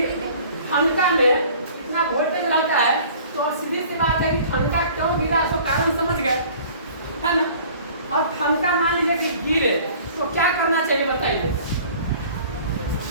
ठनका में इतना वोल्टेज रहता है, तो सीधी सी बात है कि ठनका क्यों गिरा, तो कारण समझ गए, है ना। और ठनका मान लीजिए कि गिरे तो क्या करना चाहिए बताइए,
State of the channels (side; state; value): both; inverted; correlation -0.49